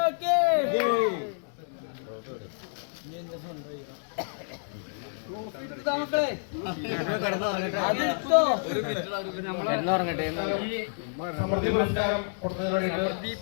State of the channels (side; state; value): right; silent; digital silence